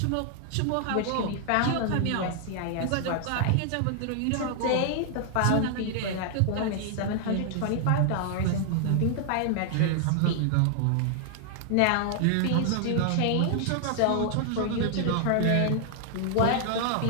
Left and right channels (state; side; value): different; both; correlation 0.00